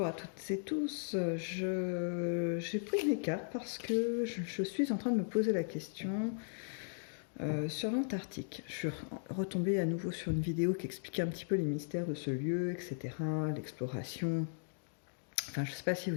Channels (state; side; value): silent; right; digital silence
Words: à toutes et tous. J'ai pris mes cartes parce que je suis en train de me poser la question sur l'Antarctique. Je suis retombée à nouveau sur une vidéo qui expliquait un petit peu les mystères de ce lieu, etc., l'exploration. Enfin, je ne sais pas si